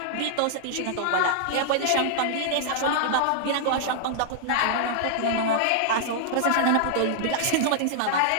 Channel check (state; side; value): different; both; correlation -0.01